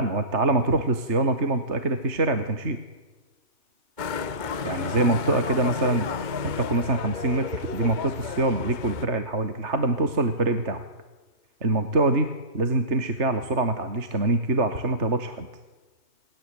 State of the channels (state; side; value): late; left; 2.2 ms